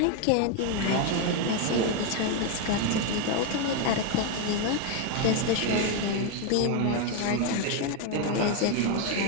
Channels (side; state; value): both; different; correlation 0.01